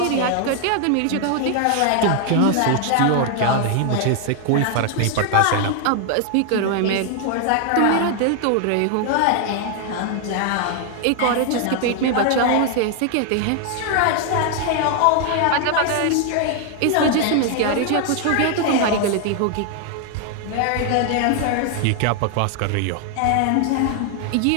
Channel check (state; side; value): different; both; correlation 0.00